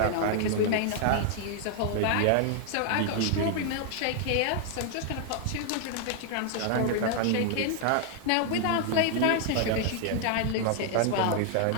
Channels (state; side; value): different; both; correlation 0.00